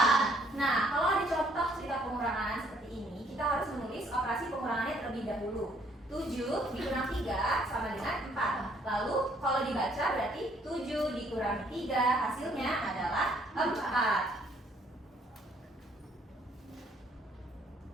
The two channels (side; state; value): both; normal; correlation 0.64